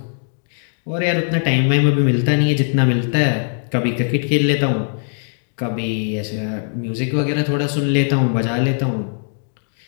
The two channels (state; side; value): silent; right; digital silence